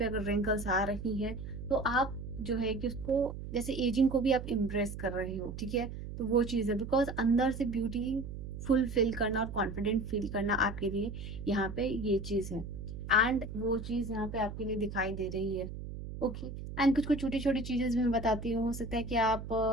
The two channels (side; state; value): right; noise; hum, 9 dB below the sound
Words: अगर रिंकल्स आ रही हैं तो आप जो है कि उसको, जैसे एजिंग को भी आप इम्प्रेस कर रहे हो। ठीक है, तो वो चीज़ है, बिकॉज अंदर से ब्यूटी फुलफिल करना और कॉन्फिडेंट फील करना आपके लिए यहाँ पे ये चीज़ है। एंड वो चीज़ यहाँ पे आपके लिए दिखाई दे रही है। ओके, एंड कुछ कुछ छोटी छोटी चीजें भी मैं बताती हूँ। हो सकता है कि आप